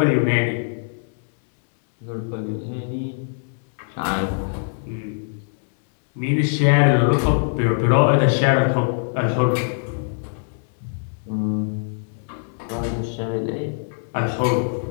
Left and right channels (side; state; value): right; silent; digital silence